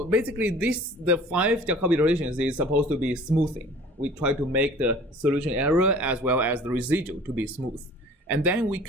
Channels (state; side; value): normal; both; correlation 0.47